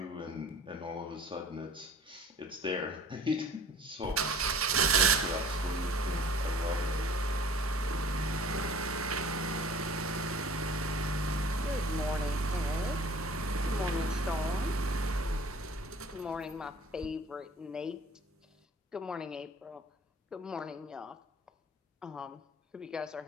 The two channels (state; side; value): normal; both; correlation 0.48